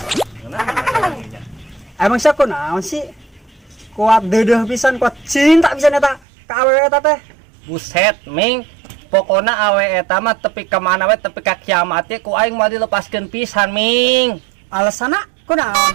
Emang siapa naon sih? Kuat deudeuh pisan, kuat cinta pisan eta ka awewe eta teh. Buset, Ming. Pokona awe eta mah tepi ka mana we tepi ka kiamat ye ku aing mah dilepaskeun pisan, Ming. Alasana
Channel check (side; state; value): left; drops out; at 6.2 s